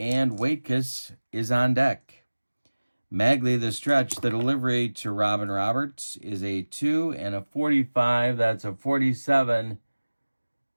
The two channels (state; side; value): inverted; both; correlation -1.00